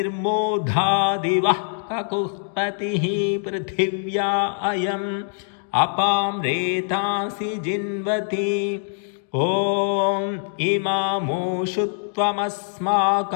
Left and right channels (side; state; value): right; silent; digital silence